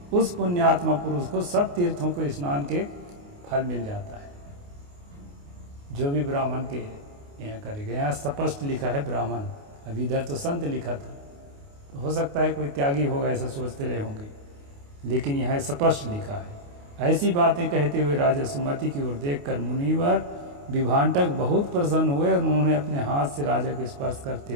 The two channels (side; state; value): left; late; 28 ms